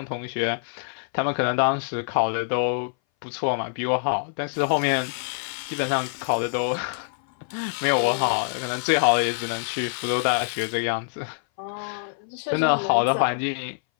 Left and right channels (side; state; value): right; silent; 60 dB below the other